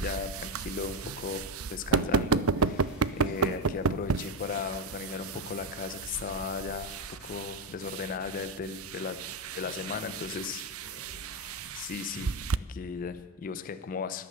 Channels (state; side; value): normal; both; correlation 0.12